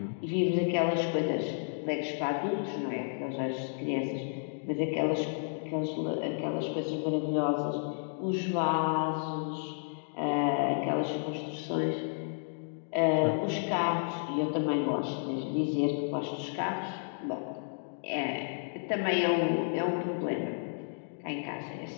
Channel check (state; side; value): silent; right; digital silence